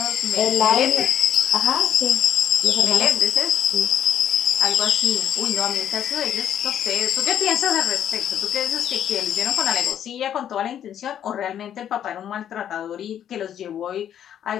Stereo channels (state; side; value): quieter; right; 10.0 dB